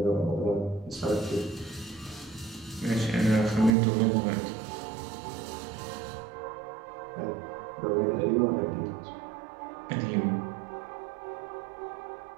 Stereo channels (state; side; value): drops out; left; at 3.8 s